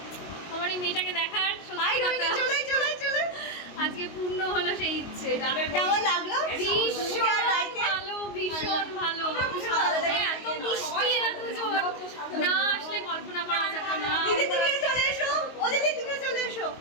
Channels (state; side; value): late; right; 22 ms